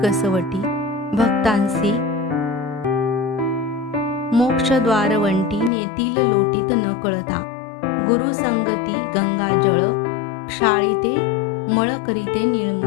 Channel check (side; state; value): right; drops out; at 5.7 s